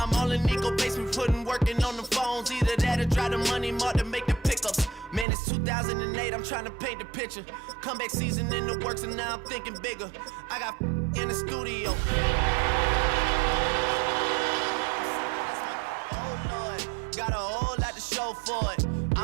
I'm all in Nico basement, working on the phones. Either that or drive the money mark to make the pickups. Man, it's 2008, I'm trying to paint the picture. Comeback season in the works and now I'm thinking bigger. I got in the studio. Oh Lord, got a whole lot to show for it.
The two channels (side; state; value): left; drops out; at 5.2 s